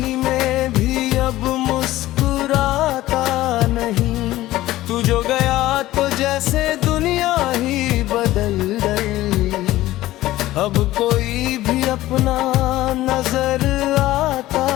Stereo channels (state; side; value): quieter; right; 16.1 dB